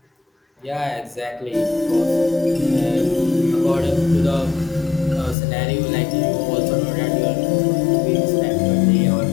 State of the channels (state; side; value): drops out; right; at 5.4 s